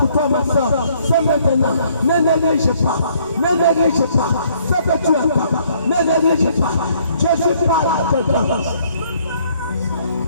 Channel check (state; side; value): inverted; both; correlation -0.64